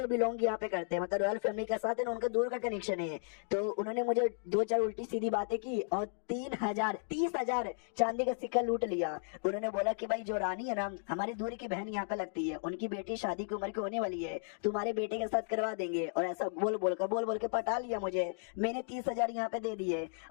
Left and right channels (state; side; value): silent; right; digital silence